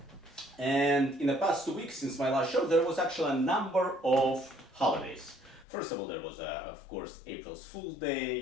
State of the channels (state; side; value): drops out; right; at 5.7 s